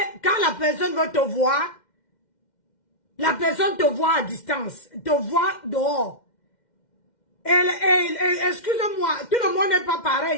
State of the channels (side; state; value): right; late; 2.1 ms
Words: quand la personne veut te voir, la personne te voit à distance, te voit dehors. Excusez-moi, tout le monde n'est pas